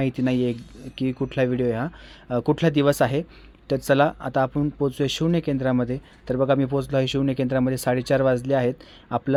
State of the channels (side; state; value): both; identical; correlation 1.00